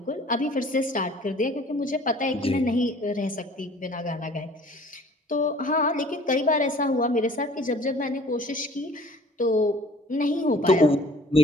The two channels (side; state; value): both; normal; correlation 0.51